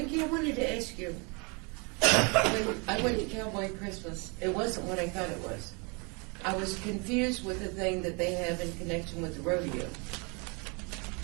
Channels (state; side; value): quieter; left; 31.8 dB